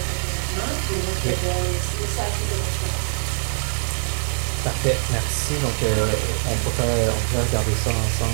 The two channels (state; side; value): silent; left; digital silence